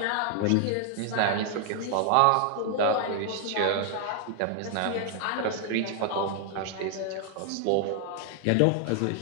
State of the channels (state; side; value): different; both; correlation 0.00